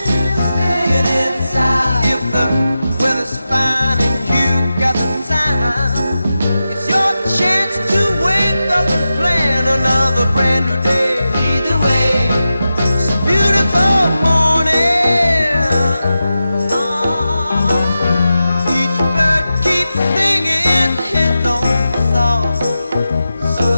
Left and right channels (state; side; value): inverted; both; correlation -0.91